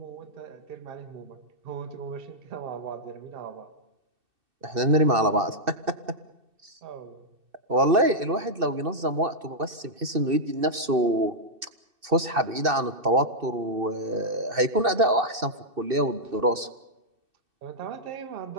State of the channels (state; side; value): late; left; 2.6 ms